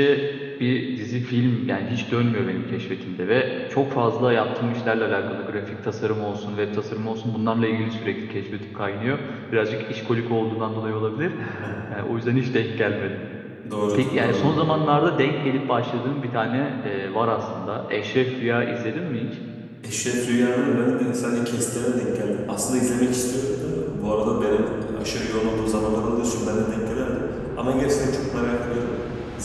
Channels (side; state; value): both; identical; correlation 1.00